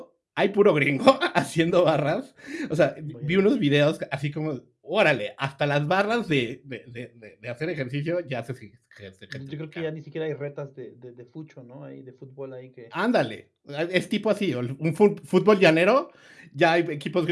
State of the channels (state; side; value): identical; both; correlation 1.00